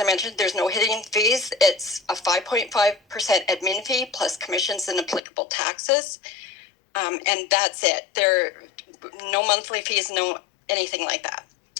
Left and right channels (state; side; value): drops out; right; at 5.2 s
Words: mentioned, there's no hidden fees. It's a 5.5% admin fee plus commissions and applicable taxes. And that's it. There no monthly fees, no anything like that.